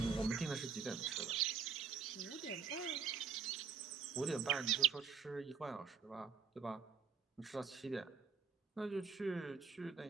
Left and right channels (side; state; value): left; quieter; 6.1 dB